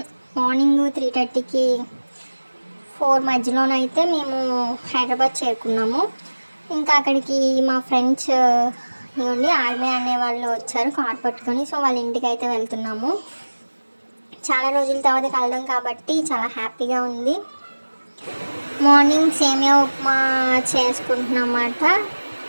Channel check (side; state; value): both; inverted; correlation -1.00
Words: మార్నింగ్ 3:30కి 4 మధ్యలోనైతే మేము హైదరాబాద్ చేరుకున్నాము. ఇంకా అక్కడికి మా ఫ్రెండ్స్ ఇవ్వండి ఆర్మీ అనే వాళ్ళు వచ్చారు కార్ పట్టుకొని. సో వాళ్ళ ఇంటికి అయితే వెళ్తున్నాము. చాలా రోజుల తర్వాత కలడం కాబట్టి చాలా హ్యాపీగా ఉంది. మార్నింగ్ సేమియా ఉప్మా చేసుకుంటున్నమాట.